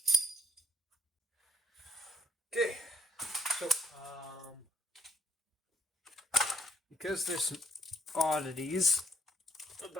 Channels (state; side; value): normal; both; correlation 0.70